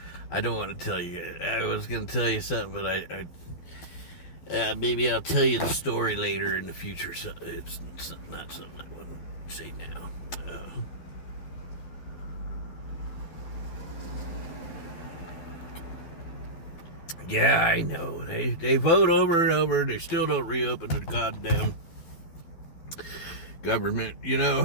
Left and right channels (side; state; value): right; late; 12 ms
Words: I don't want to tell you. I was going to tell you something, but maybe I'll tell you the story later in the future. So it's not something I want to say now. Yeah, I know. They vote over and over, and they still don't reopen the goddamn government,